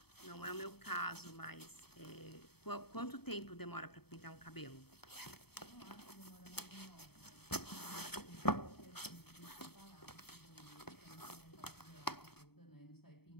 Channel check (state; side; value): late; right; 0.97 ms